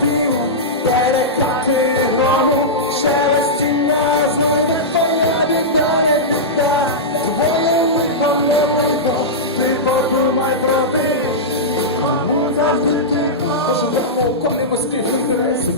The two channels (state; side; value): normal; both; correlation -0.12